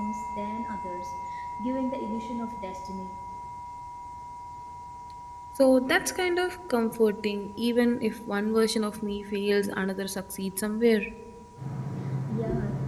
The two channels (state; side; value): identical; both; correlation 1.00